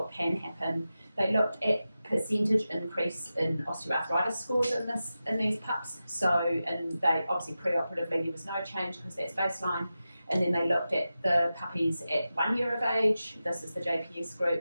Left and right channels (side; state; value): both; inverted; correlation -0.92